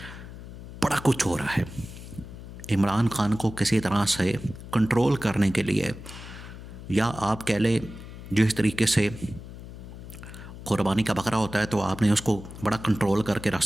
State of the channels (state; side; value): noise; left; hum, 13 dB below the sound